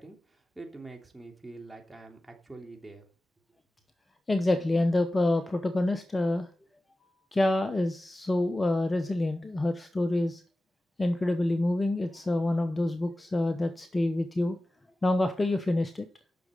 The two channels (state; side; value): normal; both; correlation 0.96